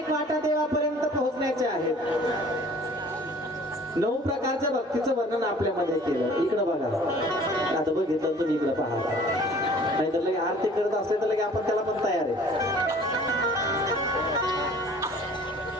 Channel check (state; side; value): normal; both; correlation 0.51